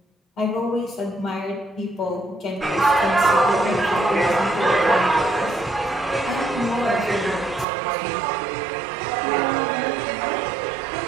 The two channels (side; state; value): left; drops out; at 7.7 s